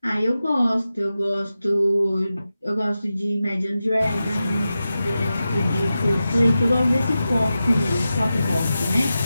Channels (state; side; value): inverted; both; correlation -0.92